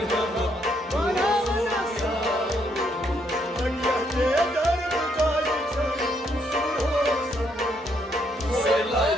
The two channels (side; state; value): both; normal; correlation 0.73